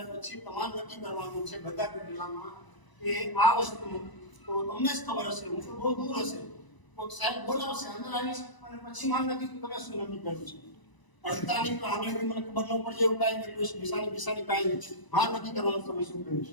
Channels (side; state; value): right; late; 1.0 ms